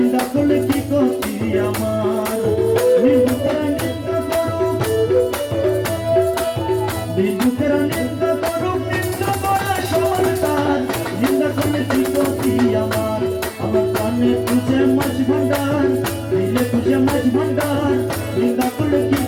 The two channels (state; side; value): identical; both; correlation 1.00